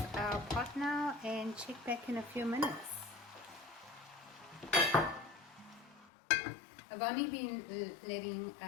our pot now and check back in a few minutes. I've only been letting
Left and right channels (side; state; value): right; drops out; at 6.1 s